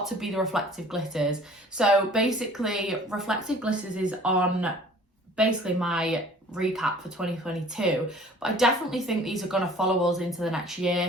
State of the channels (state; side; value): normal; both; correlation 0.50